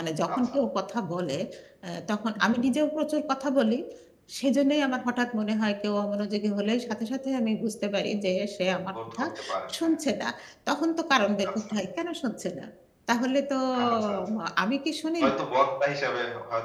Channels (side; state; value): both; identical; correlation 1.00